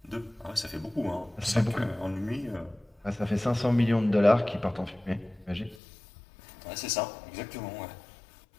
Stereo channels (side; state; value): right; drops out; at 5.8 s